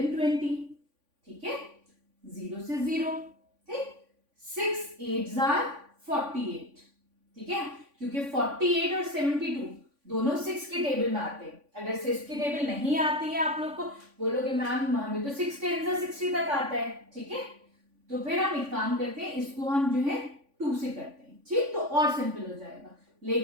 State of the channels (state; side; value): late; left; 3.5 ms